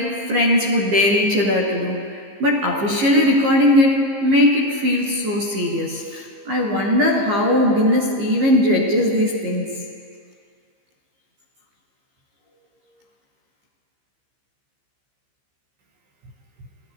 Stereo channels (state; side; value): late; left; 15 ms